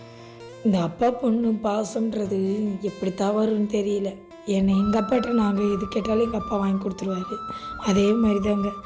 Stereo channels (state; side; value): identical; both; correlation 1.00